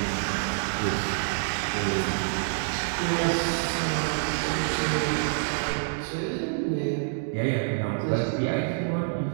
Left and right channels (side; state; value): left; silent; digital silence